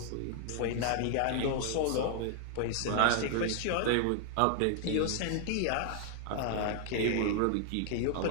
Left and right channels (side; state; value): both; different; correlation 0.00